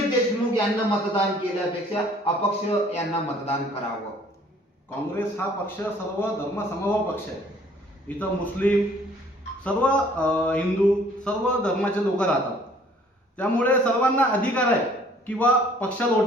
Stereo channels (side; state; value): both; normal; correlation 0.57